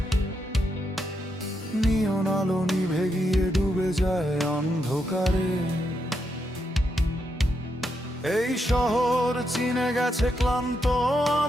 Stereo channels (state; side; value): normal; both; correlation 0.81